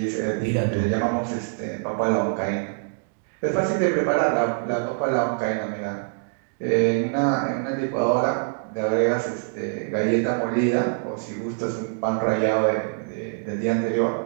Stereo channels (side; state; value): left; silent; digital silence